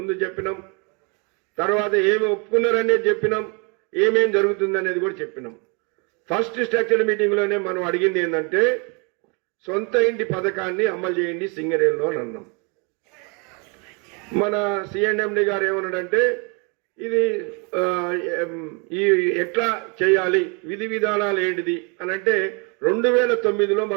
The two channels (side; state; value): left; quieter; 33.0 dB